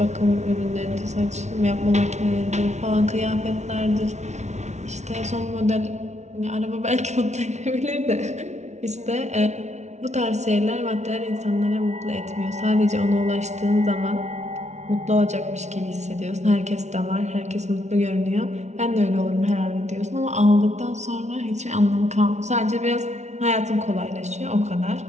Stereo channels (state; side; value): late; left; 0.32 ms